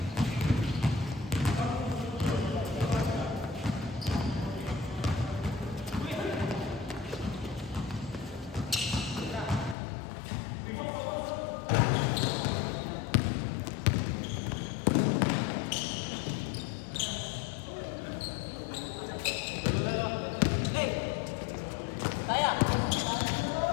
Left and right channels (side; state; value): right; drops out; at 9.8 s